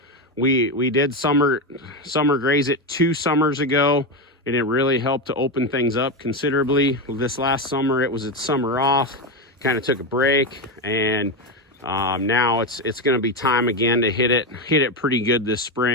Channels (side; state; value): both; normal; correlation 0.13